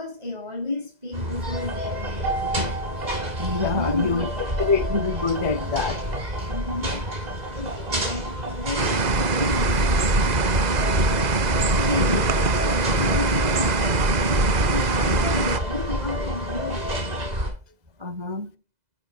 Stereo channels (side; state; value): left; late; 2.0 ms